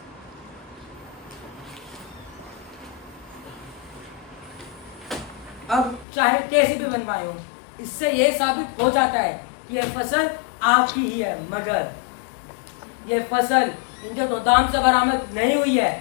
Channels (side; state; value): right; drops out; at 6.1 s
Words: अब चाहे कैसे भी बनवाए हो, इससे ये साबित हो जाता है कि ये फसल आपकी ही है। मगर ये फसल इनके गोदाम से बरामद नहीं हुई है,